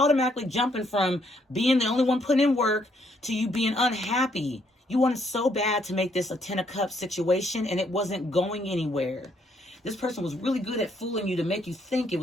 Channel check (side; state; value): both; normal; correlation 0.71